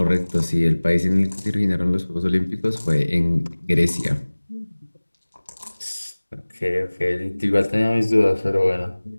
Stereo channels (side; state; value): both; inverted; correlation -1.00